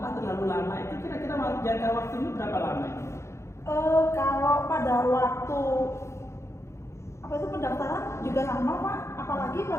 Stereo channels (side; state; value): right; late; 0.13 ms